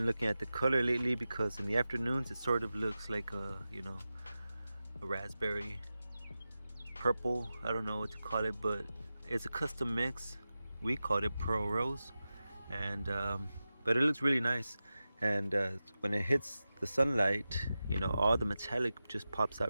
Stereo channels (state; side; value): inverted; both; correlation -0.94